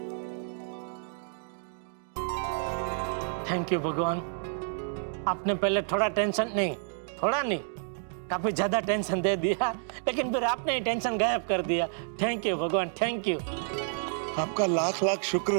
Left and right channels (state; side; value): silent; left; digital silence